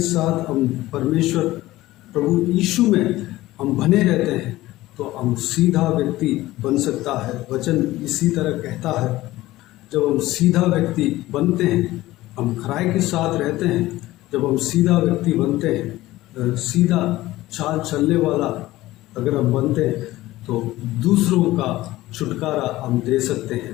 साथ हम परमेश्वर प्रभु यीशु में हम बने रहते हैं तो हम सीधा व्यक्ति बन सकता है। वचन इसी तरह कहता है, जब हम सीधा व्यक्ति बनते हैं, हम खराई के साथ रहते हैं, जब हम सीधा व्यक्ति बनते हैं, सीधा चाल चलने वाला अगर हम बनते हैं तो दूसरों का छुटकारा हम दे सकते हैं।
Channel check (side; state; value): right; quieter; 17.1 dB